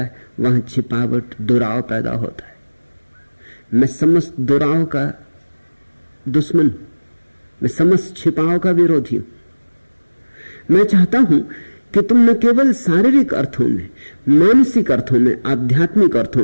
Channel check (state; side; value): inverted; both; correlation -1.00